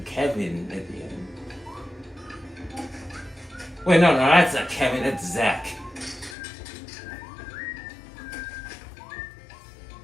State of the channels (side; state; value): right; drops out; at 6.4 s